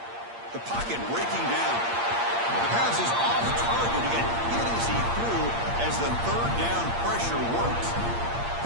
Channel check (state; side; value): late; left; 8.6 ms